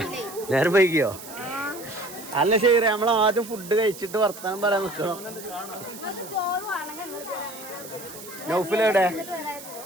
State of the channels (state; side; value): noise; right; hiss, 14 dB below the sound